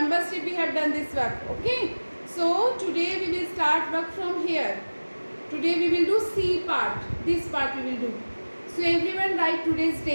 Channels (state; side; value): inverted; both; correlation -1.00